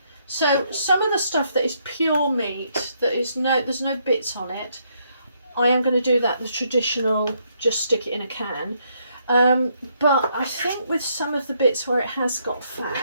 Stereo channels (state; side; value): inverted; both; correlation -0.73